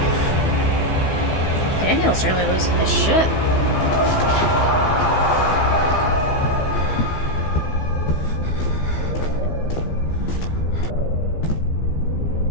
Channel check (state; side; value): late; right; 15 ms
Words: Daniel's really losing his shit.